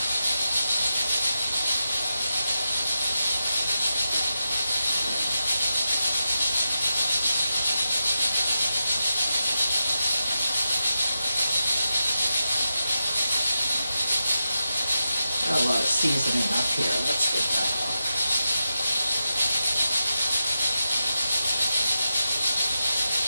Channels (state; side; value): inverted; both; correlation -0.89